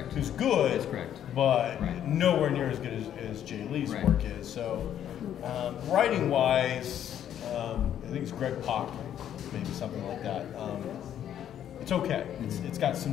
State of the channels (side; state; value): right; quieter; 10.3 dB